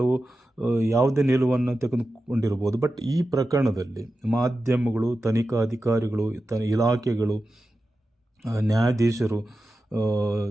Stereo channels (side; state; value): both; normal; correlation 0.92